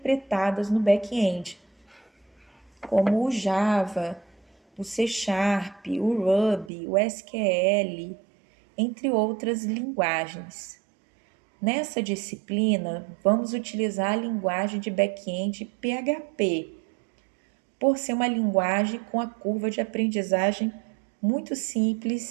no back-end, como o Java, o C Sharp, o Ruby, o SQL, entre outras linguagens. Nessa disciplina, vamos utilizar a linguagem de back-end PHP, por ser uma linguagem com a curva de aprendizagem muito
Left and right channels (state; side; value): drops out; left; at 6.7 s